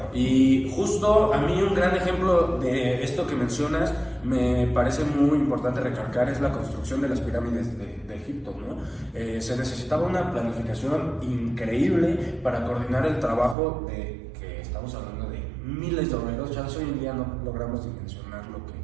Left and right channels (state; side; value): drops out; left; at 13.6 s